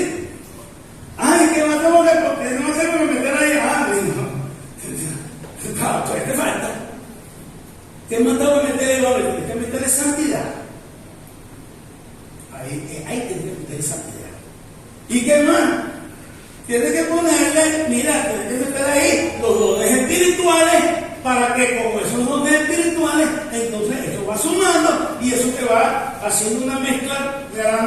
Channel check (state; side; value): identical; both; correlation 1.00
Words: Ay, ¿qué más tengo que meter ahí? ¿Qué te falta? ¿Qué más tengo que meter ahí? Tienes que meterle santidad. Ahí tienes que meterle santidad. ¿Y qué más? Tienes que ponerle, tienes que meter ahí los dones espirituales, para que con esos dones espirituales, entonces eso va sumando y eso te va haciendo una mezcla